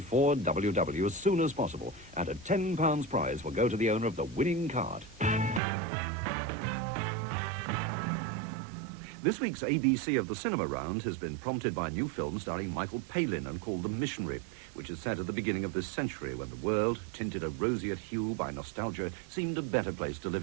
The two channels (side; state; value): left; drops out; at 5.6 s